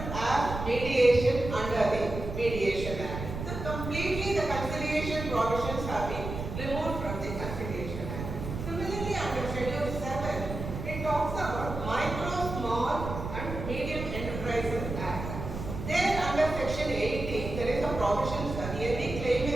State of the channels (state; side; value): noise; right; rumble, 7 dB below the sound